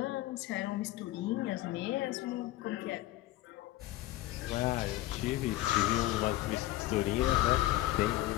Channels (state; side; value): quieter; right; 16.1 dB